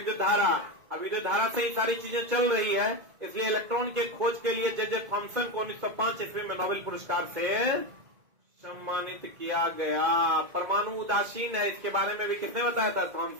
धारा। अब विद्युत धारा से ही सारी चीजें चल रही है, इसलिए इलेक्ट्रॉन के खोज के लिए जे थॉमसन को 1905 ईस्वी में नोबेल पुरस्कार से सम्मानित किया गया। परमाणु उदासीन है, इसके बारे में भी किसने बताया था?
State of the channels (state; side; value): late; left; 2.1 ms